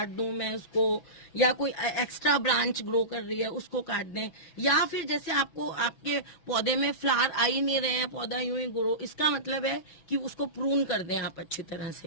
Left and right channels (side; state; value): right; late; 6.1 ms